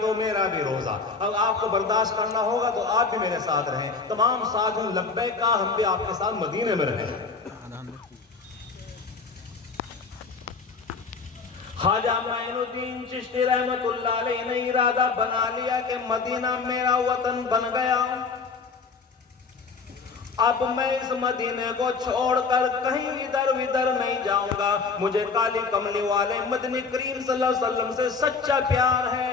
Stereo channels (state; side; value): quieter; right; 4.8 dB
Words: تو میرا بھی روزہ. اب آپ کو برداشت کرنا ہوگا تو آپ بھی میرے ساتھ رہیں. تمام ساتھیوں لبیک کہا، ہم بھی آپ کے ساتھ مدینے میں رہیں. خواجہ معین الدین چشتی رحمت اللہ علیہ نے ارادہ بنا لیا کہ مدینہ میرا وطن بن گیا. اب میں اس مدینے کو چھوڑ کر کہیں ادھر ادھر نہیں جاؤں گا. مجھے کالی کملی والے مدنی کریم صلی اللہ علیہ وسلم سے سچا پیار